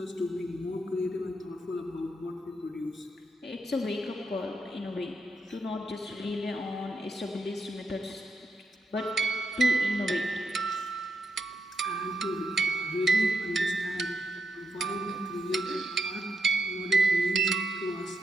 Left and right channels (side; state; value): both; normal; correlation 0.83